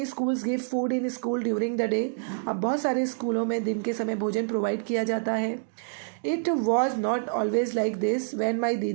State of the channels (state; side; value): silent; left; digital silence